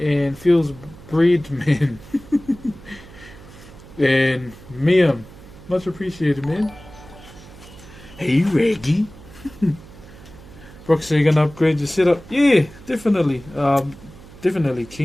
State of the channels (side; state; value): right; noise; hum, 19 dB below the sound